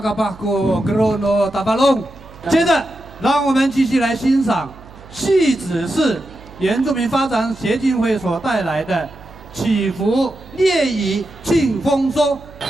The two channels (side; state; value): right; noise; hum, 20 dB below the sound